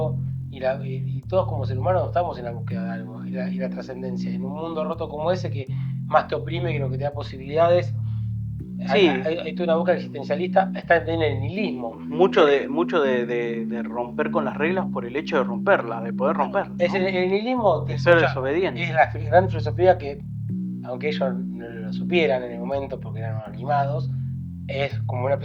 y todos como seres humanos estamos en la búsqueda de algo, y la trascendencia. En un mundo roto como ese, que más te oprime que lo que te da posibilidades, Sí, hay toda una búsqueda existencialista, está en el nihilismo. mucho de romper con las reglas por el hecho de romperlas, de poder romperlas. Es el nihilismo De ser desobediente. es la gran filosofía que, aunque ellos no lo supieran en el momento porque eran animados, es como una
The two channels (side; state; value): both; identical; correlation 1.00